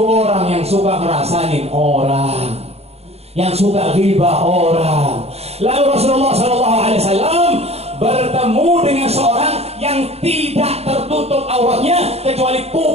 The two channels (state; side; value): late; left; 0.30 ms